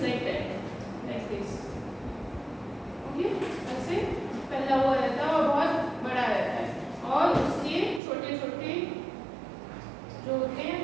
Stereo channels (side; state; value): left; drops out; at 8.0 s